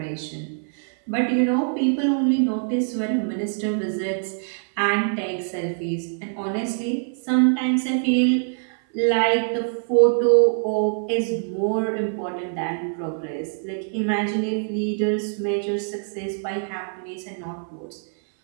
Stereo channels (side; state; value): left; silent; 58 dB below the other